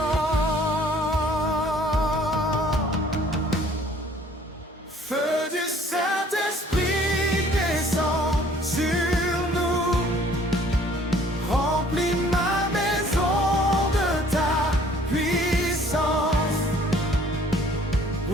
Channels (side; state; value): both; normal; correlation 0.56